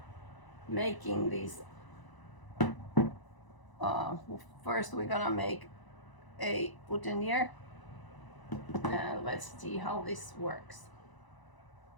making these. First we're gonna make a boutonniere. And let's see how this works.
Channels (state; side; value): late; right; 1.0 ms